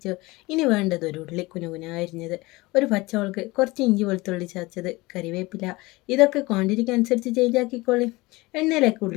ഇനി വേണ്ടത് ഒരു ഉള്ളി കുനുകുന അരിഞ്ഞത്, ഒരു പച്ചമുളക്, കുറച്ച് ഇഞ്ചി വെളുത്തുള്ളി ചതച്ചത്, കരിവേപ്പില. ഇതൊക്കെ ക്വാണ്ടിറ്റിക്ക് അനുസരിച്ച് ചേഞ്ച് ആക്കിക്കോളി. എണ്ണയിലേക്ക്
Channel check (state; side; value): quieter; right; 21.9 dB